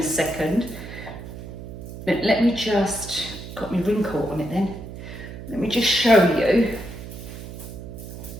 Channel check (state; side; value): noise; right; hum, 11 dB below the sound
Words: second. But let me just, got my ring caught on it then. Let me just show you